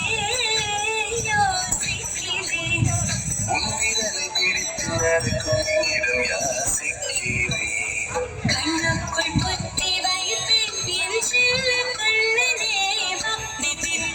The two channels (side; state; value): both; identical; correlation 1.00